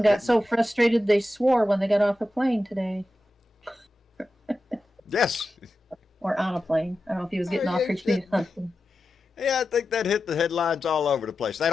strike got so frustrated they swore when they got off a plane today. Yes. Or on a plane. I don't know if he was getting Oh, off yeah, or getting something. Yeah, I think that hit the headlines all over the place. They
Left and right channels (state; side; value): normal; both; correlation 0.91